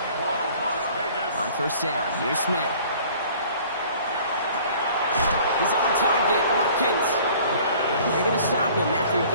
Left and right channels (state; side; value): inverted; both; correlation -0.51